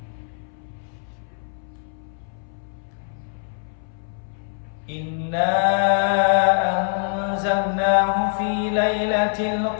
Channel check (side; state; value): right; silent; 63 dB below the other